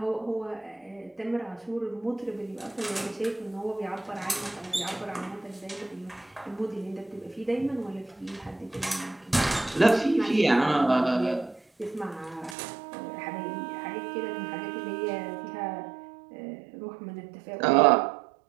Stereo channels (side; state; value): left; drops out; at 12.6 s